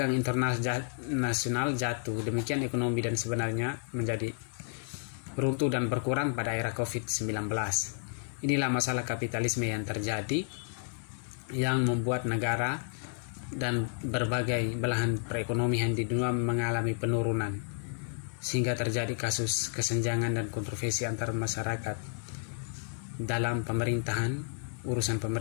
internasional jatuh, demikian ekonomi dan sebenarnya menjadi runtuh dan berkurang pada era COVID-19. Inilah masalah kapitalisme yang terjadi, yang membuat negara dan berbagai belahan perekonomian di dunia mengalami penurunan, sehingga terjadi kasus kesenjangan dan kontroversi antar masyarakat dalam pemerintahan, urusan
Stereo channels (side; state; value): right; silent; 57 dB below the other